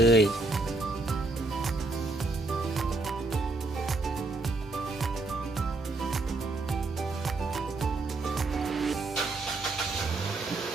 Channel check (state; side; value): quieter; left; 3.1 dB